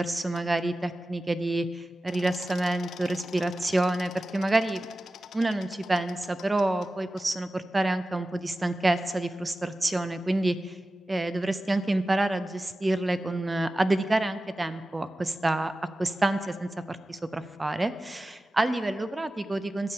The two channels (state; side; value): normal; both; correlation 0.95